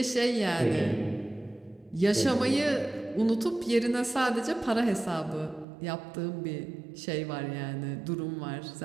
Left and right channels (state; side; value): drops out; left; at 5.7 s